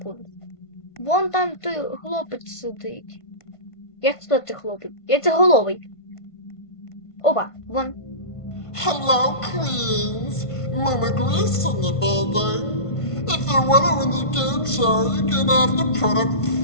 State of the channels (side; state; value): right; late; 1.5 ms